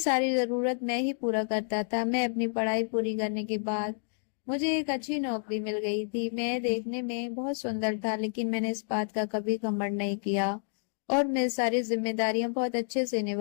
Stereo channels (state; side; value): silent; right; digital silence